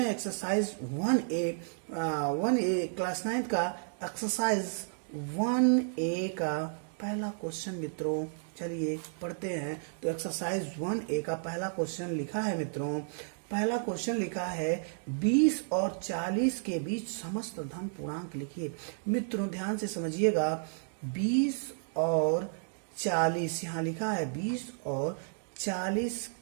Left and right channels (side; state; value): left; silent; digital silence